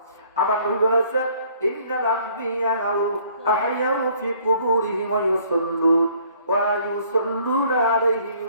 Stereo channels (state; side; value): inverted; both; correlation -0.59